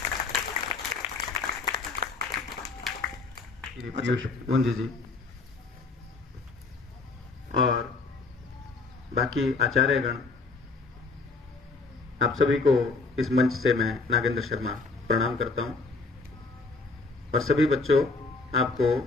पीयूष गुंजी जी और बाकी आचार्यगण, आप सभी को इस मंच से मैं नागेंद्र शर्मा प्रणाम करता हूं और सभी बच्चों आपको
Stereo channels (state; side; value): quieter; right; 3.9 dB